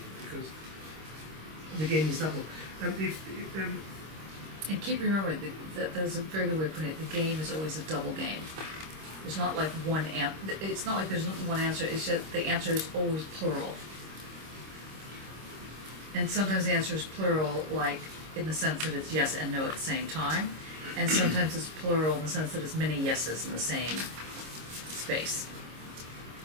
because the game is double. And keep remembering that there's a very good way of putting it. The game is always a double game. There's not like one it's not like there's not one answer. It's just the answer is always plural. And sometimes the answer is plural, like in the sense that it's yes and no at the same time, and sometimes it's plural in the sense that it's many yeses in the same space,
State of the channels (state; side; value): late; left; 26 ms